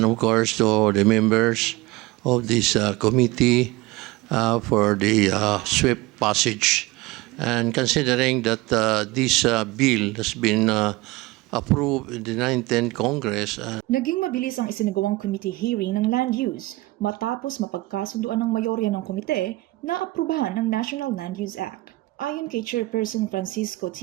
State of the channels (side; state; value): left; quieter; 20.4 dB